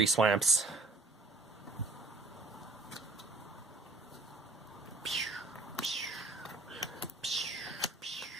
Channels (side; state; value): left; quieter; 3.2 dB